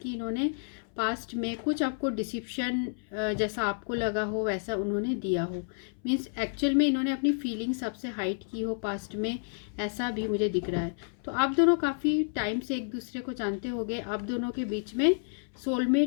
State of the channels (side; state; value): right; silent; 58 dB below the other